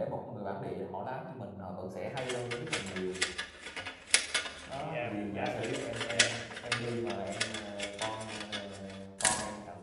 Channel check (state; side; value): identical; both; correlation 1.00